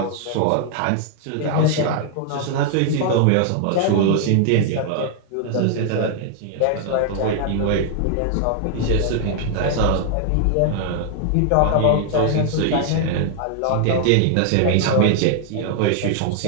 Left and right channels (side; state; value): both; different; correlation 0.00